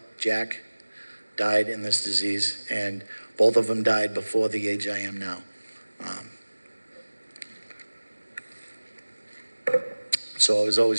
Jack, died in this disease, and both of them died before the age I am now. So I was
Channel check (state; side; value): inverted; both; correlation -1.00